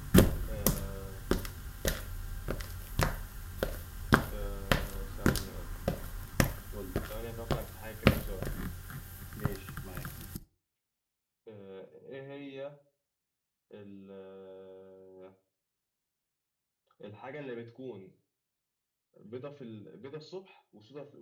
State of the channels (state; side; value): identical; both; correlation 1.00